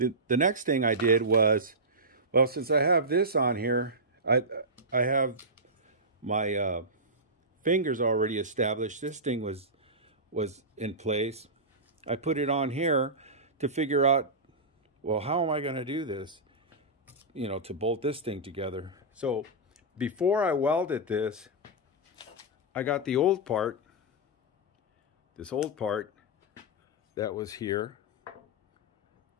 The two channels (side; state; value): both; normal; correlation -0.14